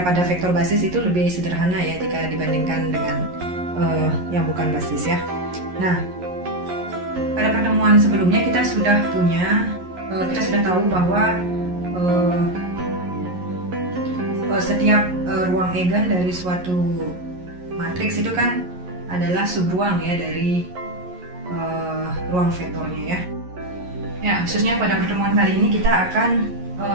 pada vektor basis itu lebih sederhana ya jika dibandingkan dengan yang bukan basis ya. Nah, pada pertemuan sebelumnya kita sudah tahu bahwa setiap ruang eigen dari suatu matriks itu kan adalah subruang ya dari ruang vektornya ya. Ya, khususnya pada pertemuan kali ini kita akan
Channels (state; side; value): late; left; 11 ms